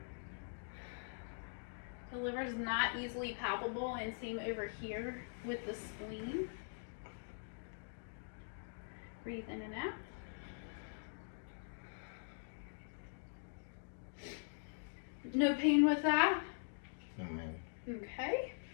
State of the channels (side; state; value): right; silent; digital silence